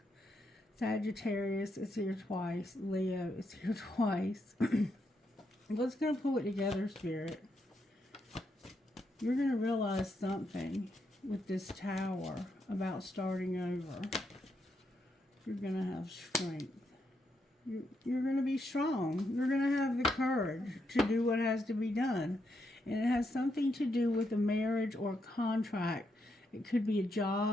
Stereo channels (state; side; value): normal; both; correlation 0.80